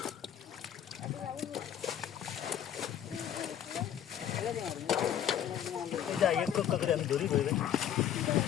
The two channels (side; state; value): right; quieter; 10.0 dB